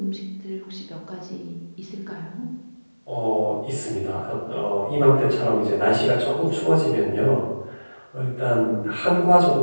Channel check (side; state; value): both; inverted; correlation -1.00